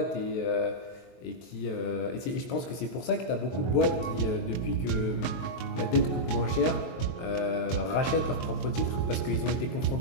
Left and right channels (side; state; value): right; late; 23 ms